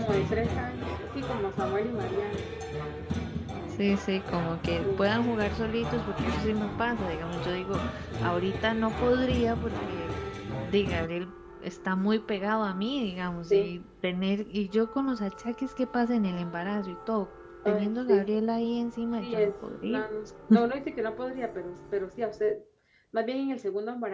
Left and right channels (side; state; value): both; identical; correlation 1.00